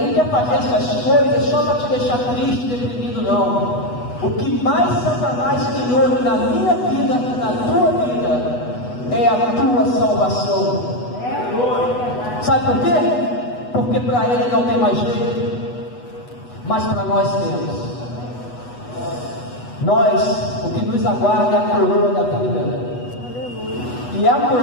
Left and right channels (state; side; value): late; right; 8.1 ms